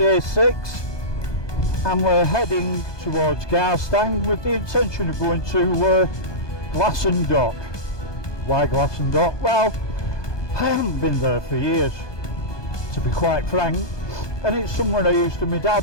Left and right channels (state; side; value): late; right; 1.2 ms